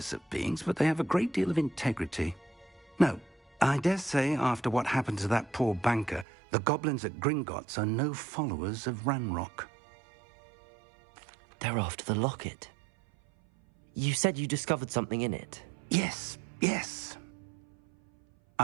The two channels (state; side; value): drops out; left; at 6.2 s